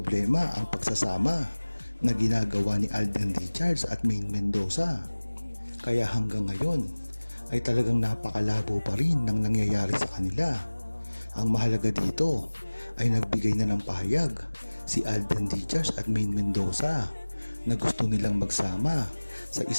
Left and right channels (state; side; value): inverted; both; correlation -1.00